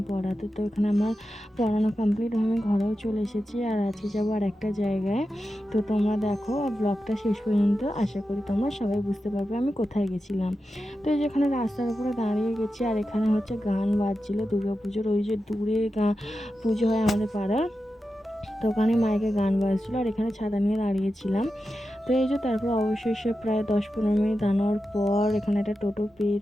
পড়াতে। তো এখানে আমার পড়ানো কমপ্লিট, আমি ঘরেও চলে এসেছি। আর আজকে যাবো আর একটা জায়গায়। তো তোমরা দেখো ব্লগটা শেষ পর্যন্ত, আশা করি তোমরা সবাই বুঝতে পারবে আমি কোথায় গেছিলাম। তো এই যেখানে রাস্তার উপরে দাঁড়িয়ে গেছি, আর এখানে হচ্ছে গান বাজছিল দুর্গাপুজোর। ওই যে দূরে পুজো হয় আমাদের পাড়ার, তো ওখানে মাইকে গান বাজছিল, আর এখানে ছাতা নিয়ে দাঁড়িয়েছিলাম। তো এই যে তারপর অবশেষে প্রায় 10-15 মিনিট দাঁড়ানোর পর এখানে একটা টোটো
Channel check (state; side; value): normal; both; correlation 0.91